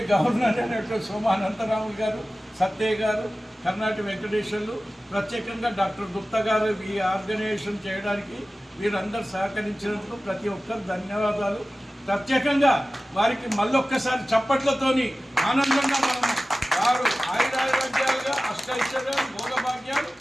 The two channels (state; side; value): normal; both; correlation 0.96